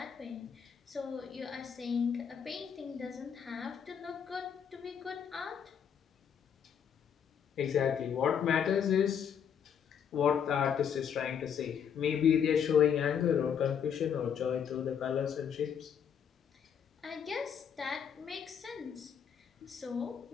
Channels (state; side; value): quieter; right; 7.8 dB